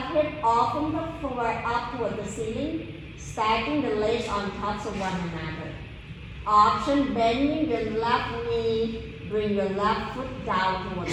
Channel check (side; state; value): both; identical; correlation 1.00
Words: hip off from the floor up toward the ceiling, stacking the legs on top of one another. Option, bending your left knee, bring your left foot down toward the